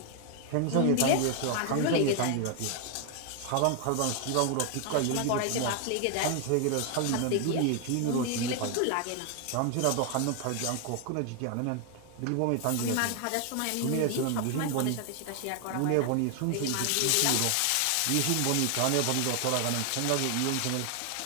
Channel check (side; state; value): both; different; correlation 0.00